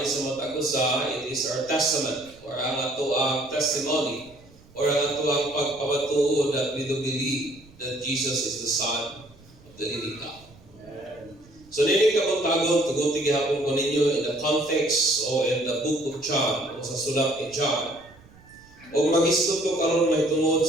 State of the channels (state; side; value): noise; right; rumble, 25 dB below the sound